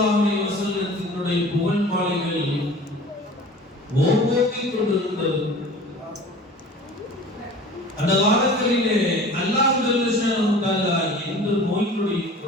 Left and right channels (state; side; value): normal; both; correlation 0.42